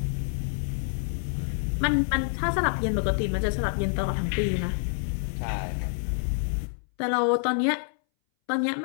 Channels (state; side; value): silent; right; 60 dB below the other